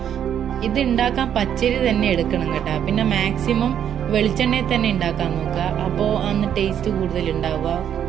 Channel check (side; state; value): left; quieter; 9.4 dB